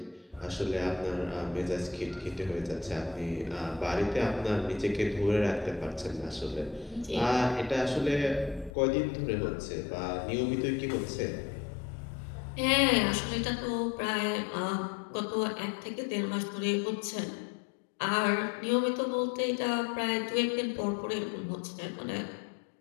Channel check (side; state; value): right; drops out; at 8.7 s